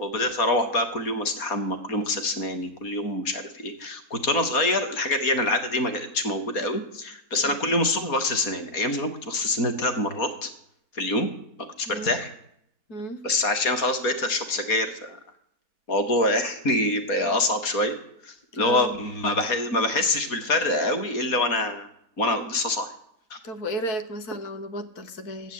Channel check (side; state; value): right; late; 4.2 ms